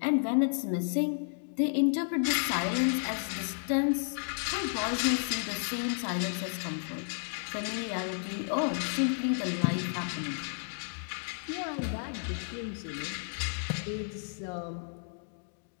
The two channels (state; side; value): silent; right; digital silence